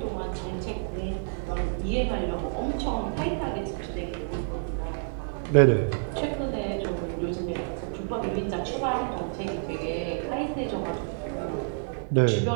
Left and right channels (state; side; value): silent; left; digital silence